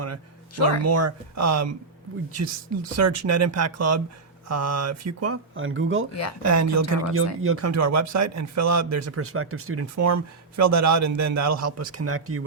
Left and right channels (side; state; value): left; quieter; 4.1 dB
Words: to learn more, we just search Net Impact Club Fuqua on Google, and you'll come to our website and fill out. There's a prospective student form. Fill that out, and then that'll help us connect you